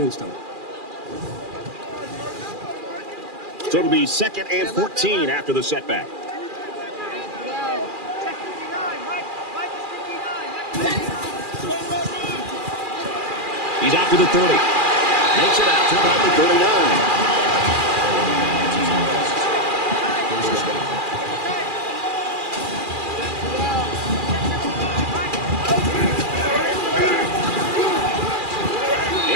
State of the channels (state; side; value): late; left; 2.4 ms